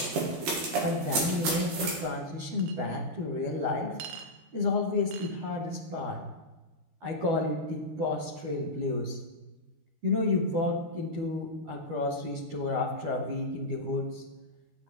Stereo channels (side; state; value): left; late; 13 ms